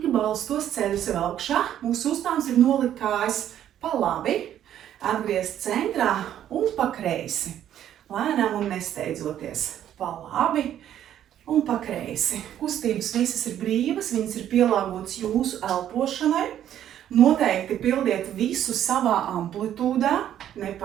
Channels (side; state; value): left; quieter; 10.9 dB